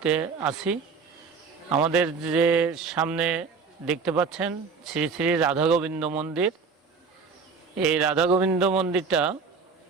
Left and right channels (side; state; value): left; quieter; 5.2 dB